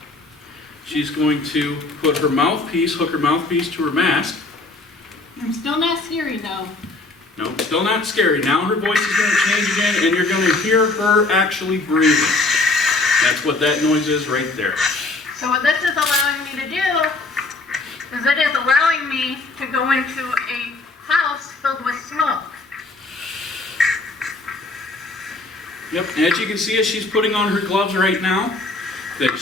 she's going to put her mouthpiece, hook her mouthpiece to her mask. I'm still not scary though. No, still not scary. Now her voice is going to change again, and you're going to hear her actually breathing. That's what that noise is right there. So what this is allowing me to do is it is allowing me to go into a house filled with smoke. Yep, as you can see, as she's putting on her gloves right now, that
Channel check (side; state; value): right; quieter; 3.2 dB